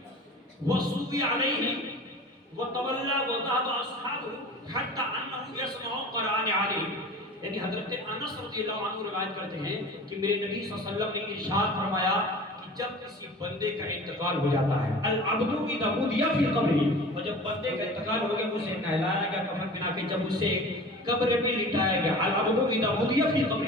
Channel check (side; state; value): both; normal; correlation 0.39